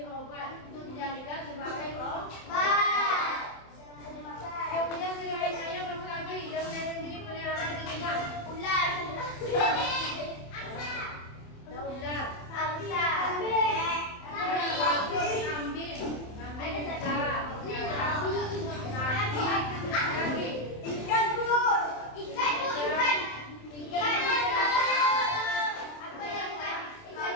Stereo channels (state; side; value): late; right; 27 ms